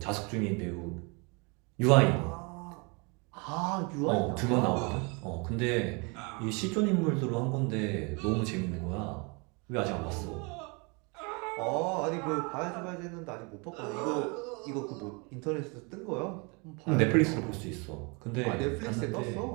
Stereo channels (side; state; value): left; quieter; 31.0 dB